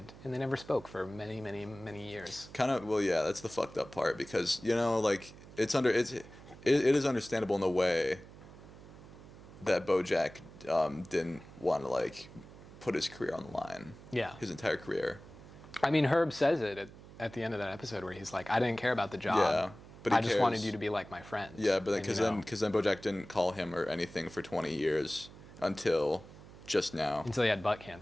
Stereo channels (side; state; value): right; noise; hum, 18 dB below the sound